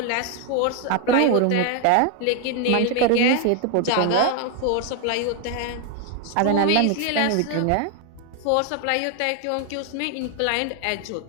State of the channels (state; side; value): different; both; correlation 0.01